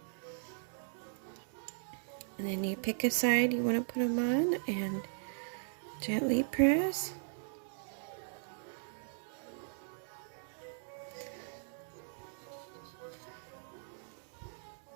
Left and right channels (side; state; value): left; silent; digital silence